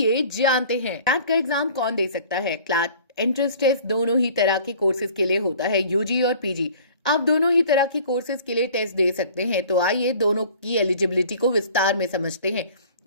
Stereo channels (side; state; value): both; inverted; correlation -0.49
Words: जानते हैं। क्लैट का एग्जाम कौन दे सकता है? क्लैट एंट्रेंस टेस्ट दोनों ही तरह के कोर्सेज के लिए होता है, यूजी और पीजी। आप दोनों ही तरह के कोर्सेज के लिए टेस्ट दे सकते हैं। तो आइए दोनों की एलिजिबिलिटी को विस्तार में समझते हैं।